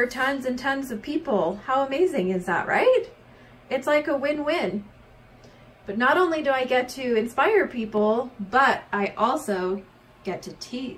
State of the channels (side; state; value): both; identical; correlation 1.00